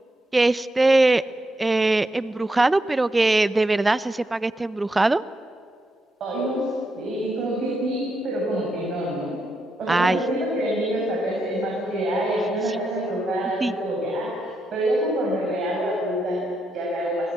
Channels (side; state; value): both; normal; correlation 0.82